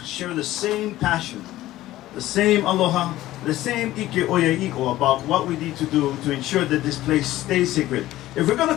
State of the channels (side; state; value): right; quieter; 15.5 dB